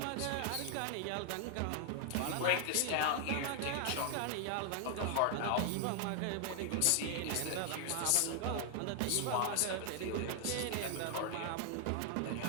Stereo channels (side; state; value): both; different; correlation 0.00